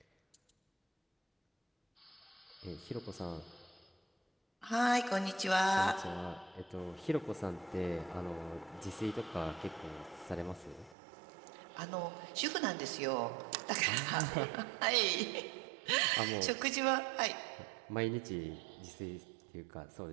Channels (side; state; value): left; drops out; at 11.0 s